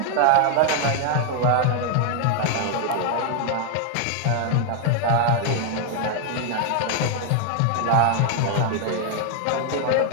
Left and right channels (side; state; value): both; different; correlation 0.00